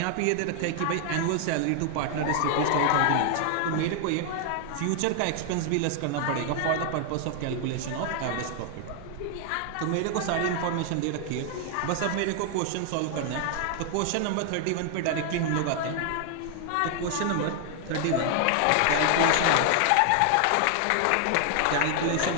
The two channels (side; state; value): both; different; correlation 0.00